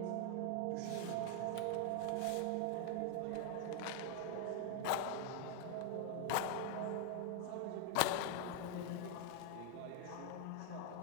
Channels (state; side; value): different; both; correlation 0.00